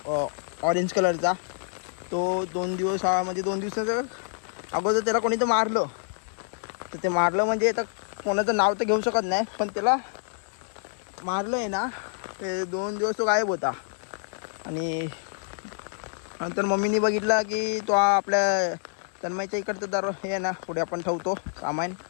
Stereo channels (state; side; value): silent; right; 59 dB below the other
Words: ऑरेंज कलरचा तो 2 दिवस म्हणजे 2 दिवसाचं अगोदर त्याला कोणी तर मारलं तर ते मारलं म्हणजे आता कोणाचं नाव तर घेऊ शकत नाही पण त्याला मारलं आहे ना ते 2 दिवस तो गायब होता आणि नंतर मम्मीने बघितला की तो आपल्या तन्मयच्या इकडचं दर हे आहे ना पुढे आपण ठेवतो सामान